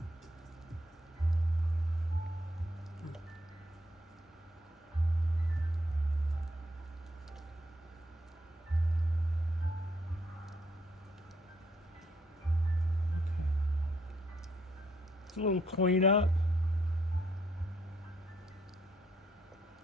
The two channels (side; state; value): both; normal; correlation 0.71